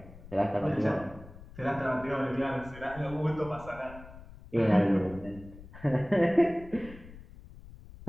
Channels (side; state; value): left; noise; rumble, 17 dB below the sound